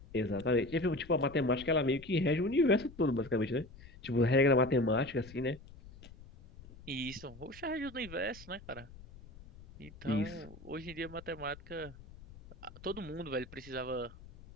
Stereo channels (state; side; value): noise; left; rumble, 19 dB below the sound